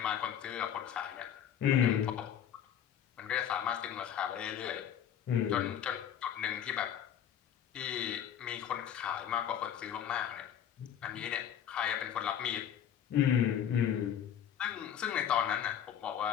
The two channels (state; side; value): quieter; right; 9.4 dB